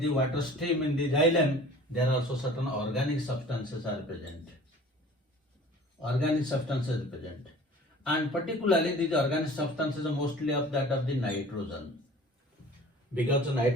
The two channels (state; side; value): normal; both; correlation 0.46